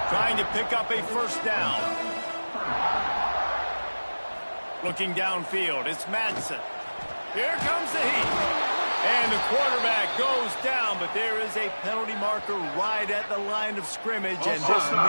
Trying to pick up a first down. Looking downfield, it's Madsen. Here comes the heat. And the quarterback goes down, but there is a penalty marker right at the line of scrimmage, and this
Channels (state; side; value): inverted; both; correlation -1.00